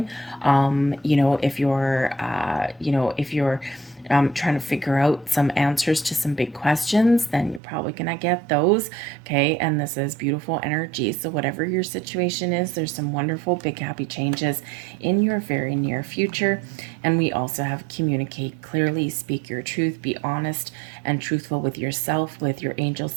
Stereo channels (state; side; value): drops out; left; at 7.6 s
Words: If you're trying to figure out some answers to some big questions, then you're probably going to get those. Okay. And this is beautiful energy. So, whatever your situation is, there's some wonderful, big, happy changes in your very near future. And we also have communicate clearly, speak your truth, be honest and truthful with yourself, with your angel